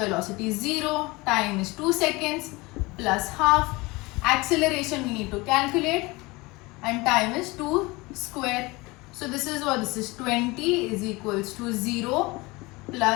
is 0, time is 2 seconds plus half, acceleration we need to calculate, and time is 2 square. So this is what this is, 20 is equals to 0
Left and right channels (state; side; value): quieter; right; 23.3 dB